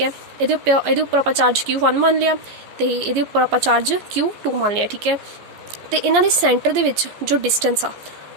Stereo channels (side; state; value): left; late; 14 ms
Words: है। ये उपर आप चार्ज Q1 मान लिया तो ये उपर आप चार्ज Q2 मान लिया, ठीक है। तो इन्हों के सेंटर दे विच जो डिस्टेंस आ